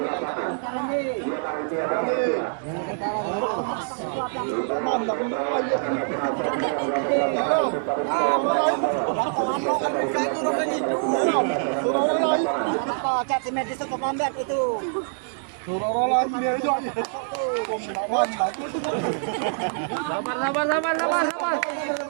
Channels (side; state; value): left; silent; digital silence